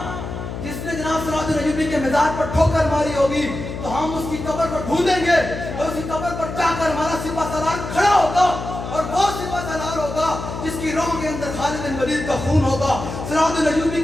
جس نے جناب صلاح الدین ایوبی کے مزار پر ٹھوکر ماری ہوگی تو ہم اس کی قبر پر ڈھونڈیں گے اور اس کی قبر پر جا کر ہمارا سپہ سالار کھڑا ہوگا اور وہ سپہ سالار ہوگا جس کی روح کے اندر خالد بن ولید کا خون ہوگا, صلاح الدین ایوبی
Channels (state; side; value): noise; left; hum, 7 dB below the sound